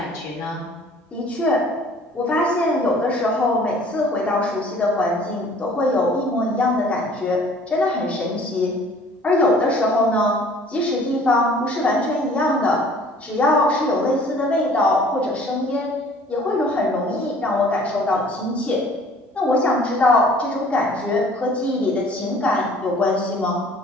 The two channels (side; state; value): both; normal; correlation 0.52